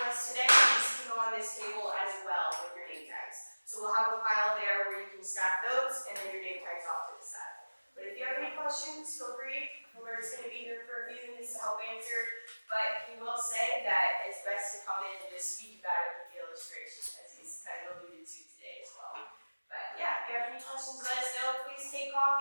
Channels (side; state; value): both; inverted; correlation -1.00